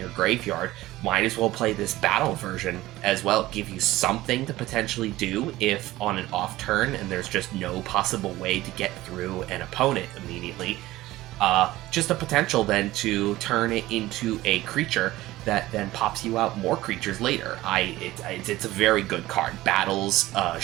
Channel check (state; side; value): quieter; left; 17.0 dB